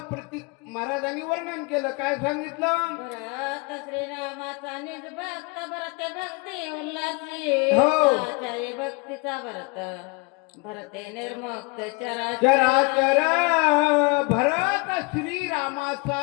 प्रतीक महाराजांनी वर्णन केलं. काय सांगितलं? भरत श्रीरामाचा निज भक्त, भरते भक्ती उल्हासी, हो. आचार्य भक्तीचा भरत, भरते निर्मुक्त चराचर. भरत श्रीरामाचा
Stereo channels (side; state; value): right; quieter; 28.7 dB